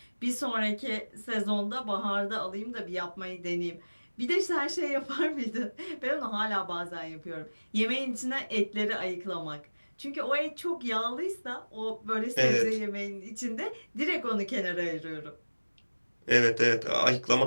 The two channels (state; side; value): inverted; both; correlation -1.00